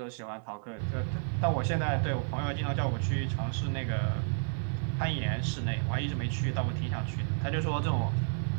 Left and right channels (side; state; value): left; silent; 57 dB below the other